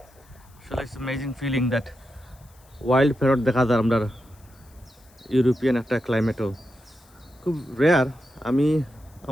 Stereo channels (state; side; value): noise; left; hiss, 29 dB below the sound